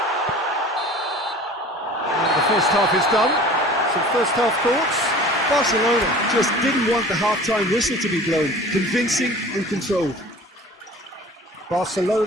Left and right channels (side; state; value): both; normal; correlation 0.43